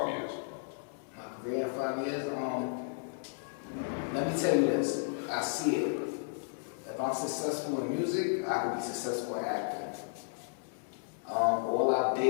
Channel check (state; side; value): silent; right; digital silence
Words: years? My career in 5 years. Let me tell you this. I see it. If I'm successful in music, I can be successful in acting. All our